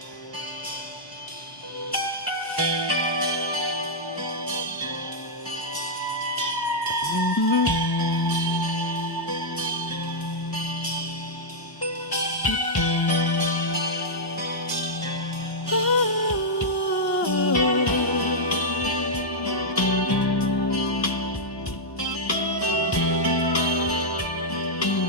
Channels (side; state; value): both; normal; correlation -0.06